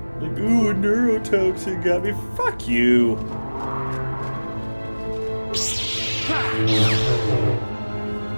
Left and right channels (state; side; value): inverted; both; correlation -1.00